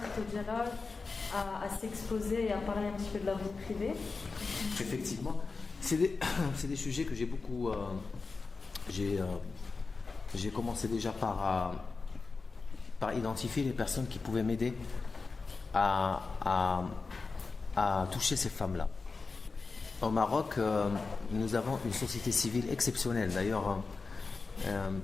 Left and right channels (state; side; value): quieter; right; 4.2 dB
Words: au dialogue, à s'exposer et à parler un petit peu de leur vie privée. Effectivement, c'est des, c'est des sujets que j'ai beaucoup... j'ai commencé déjà par identifier les personnes qui pouvaient m'aider à, à- à toucher ces femmes-là. Au Maroc, nous avons une société civile exceptionnelle. D'ailleurs,